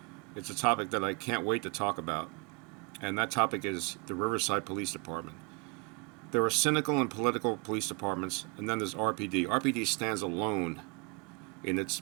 It's a topic that I can't wait to talk about, and that topic is the Riverside Police Department. There are cynical and political police departments, and then there's RPD. RPD stands alone in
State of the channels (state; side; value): quieter; left; 31.1 dB